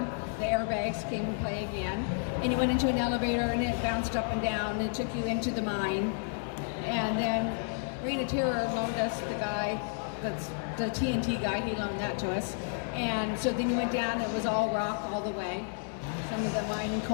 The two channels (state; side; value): silent; right; 57 dB below the other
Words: The airbags came and play again. And you went into an elevator, and it bounced up and down, and it took you into the mine. And then Reign of Terror loaned us the guy, that's the TNT guy, he loaned that to us. And so then you went down, it was all rock all the way. Some of the mining